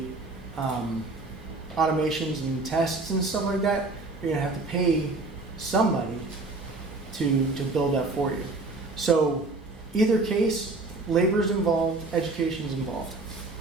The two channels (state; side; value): quieter; left; 3.3 dB